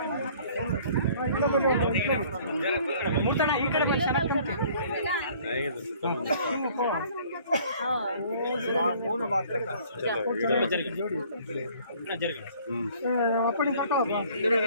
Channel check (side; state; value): both; inverted; correlation -0.55